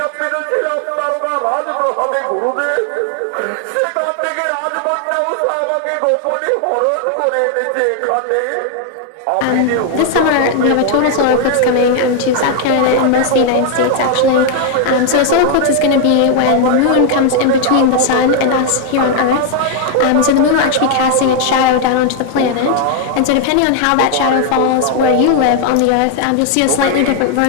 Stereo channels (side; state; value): both; different; correlation 0.00